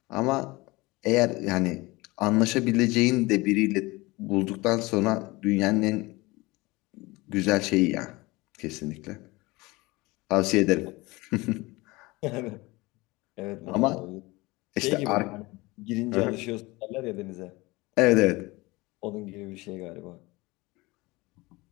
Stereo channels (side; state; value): right; quieter; 22.4 dB